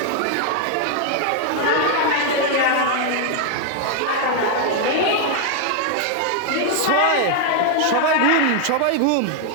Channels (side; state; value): both; different; correlation 0.00